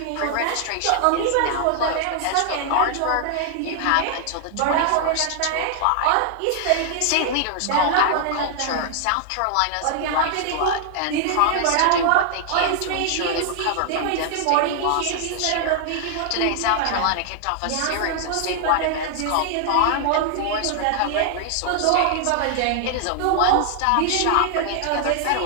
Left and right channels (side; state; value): both; different; correlation 0.00